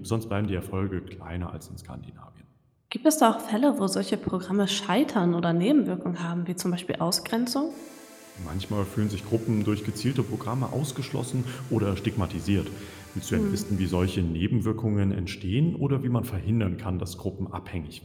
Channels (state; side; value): identical; both; correlation 1.00